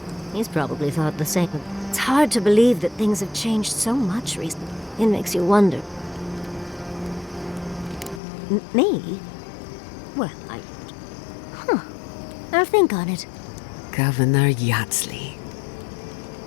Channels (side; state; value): right; drops out; at 8.2 s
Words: He's probably thought the same. It's hard to believe that things have changed so much recently. It makes you wonder. Me? Well, I'll think on it. Governor Yatzli.